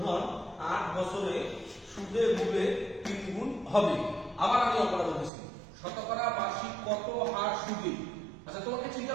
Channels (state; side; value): drops out; left; at 5.3 s